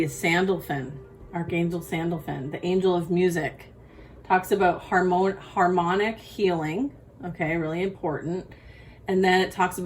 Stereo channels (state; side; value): identical; both; correlation 1.00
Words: is Sandalphon, Archangel Sandalphon, the angel of music. Talks about harmonic healing. Okay, really important. And then it talks